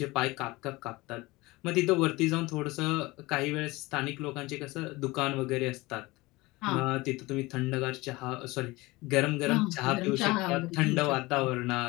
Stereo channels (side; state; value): right; quieter; 21.5 dB